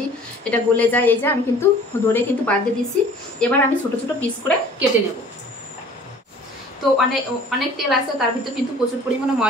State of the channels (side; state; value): both; normal; correlation 0.49